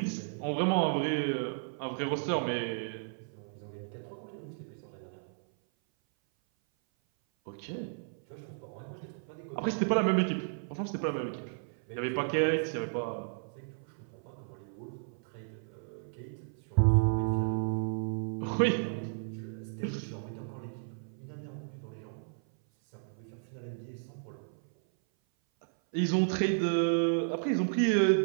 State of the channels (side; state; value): left; silent; 55 dB below the other